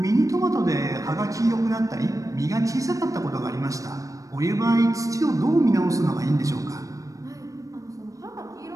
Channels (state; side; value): late; left; 0.16 ms